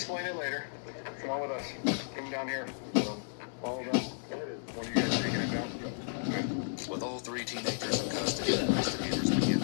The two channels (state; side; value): silent; right; digital silence